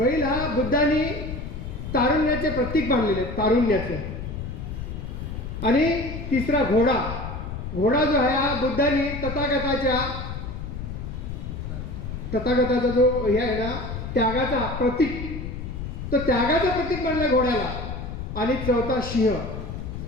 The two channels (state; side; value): noise; left; rumble, 7 dB below the sound